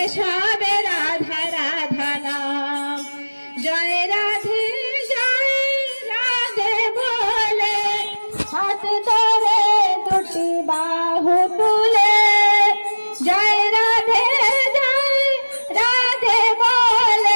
সবে রাধা রাধা নাম জয় রাধে বলে হাত ধরে দুটি বাহু তুলে জয় রাধে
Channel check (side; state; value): both; inverted; correlation -1.00